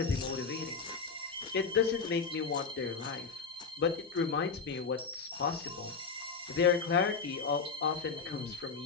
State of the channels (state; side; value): quieter; right; 5.2 dB